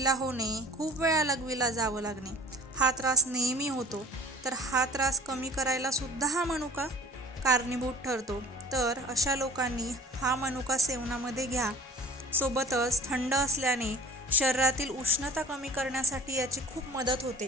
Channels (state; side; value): normal; both; correlation 0.46